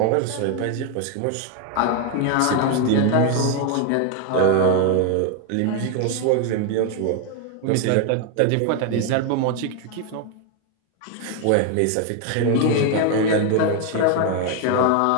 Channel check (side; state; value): both; different; correlation 0.01